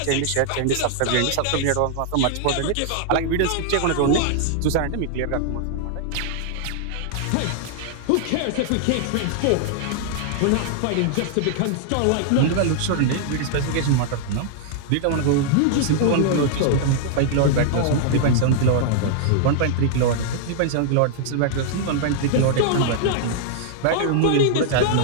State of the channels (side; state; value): both; different; correlation -0.01